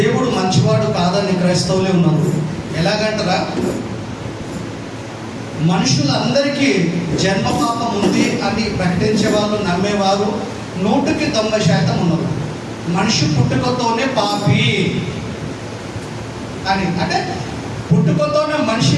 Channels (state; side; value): identical; both; correlation 1.00